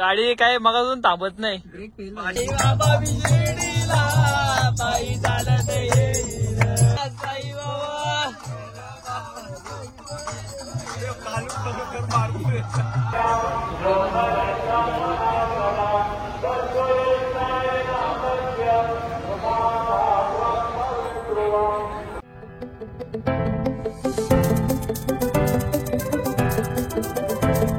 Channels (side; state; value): both; identical; correlation 1.00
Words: काय मगाजून थांबत नाही.